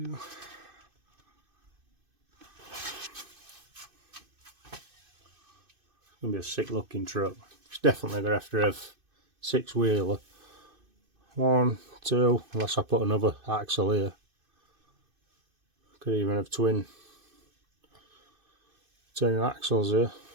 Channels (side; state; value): left; late; 2.5 ms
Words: Gonna be a sick looking truck. It's definitely gonna have to have 6-wheeler. 1, 2, unless I put another axle here. Could even have twin axles here.